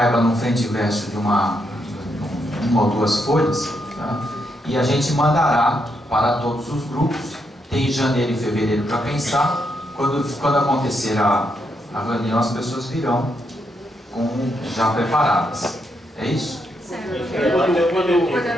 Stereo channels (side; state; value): both; normal; correlation 0.79